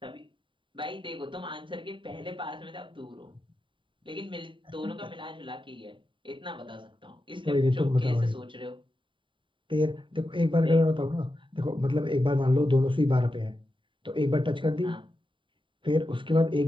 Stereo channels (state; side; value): late; left; 0.24 ms